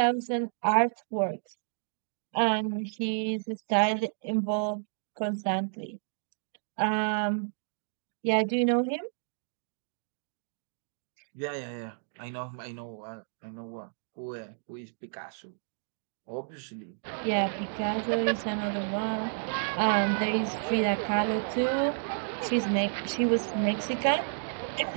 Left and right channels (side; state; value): left; silent; digital silence